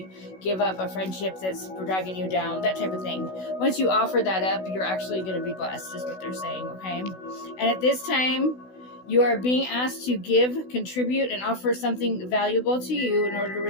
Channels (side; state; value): right; late; 16 ms